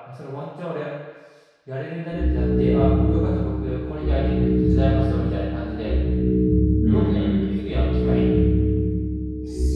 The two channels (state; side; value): identical; both; correlation 1.00